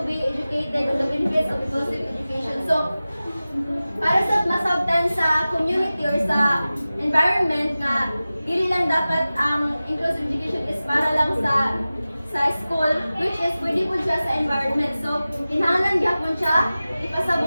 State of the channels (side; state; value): both; inverted; correlation -0.96